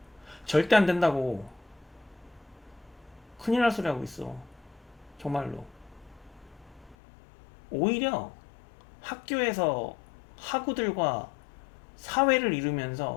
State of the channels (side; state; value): right; drops out; at 7.0 s